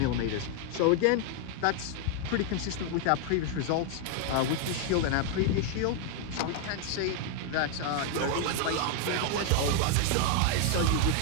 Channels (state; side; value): different; both; correlation 0.00